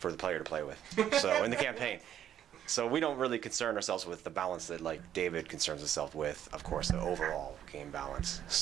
the player to play with. So in the campaign. So we don't really concern ourselves with the balance that like David concerns himself with, of course, the overall game balance.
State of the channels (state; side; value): quieter; left; 10.4 dB